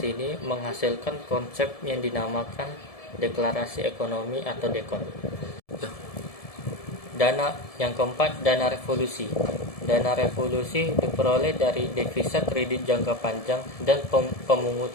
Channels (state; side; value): late; right; 1.7 ms